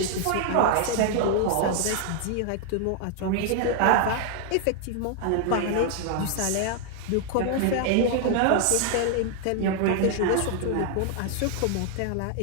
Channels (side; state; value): both; different; correlation 0.00